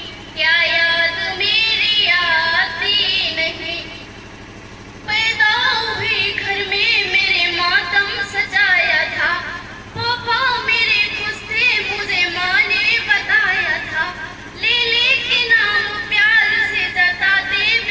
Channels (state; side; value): identical; both; correlation 1.00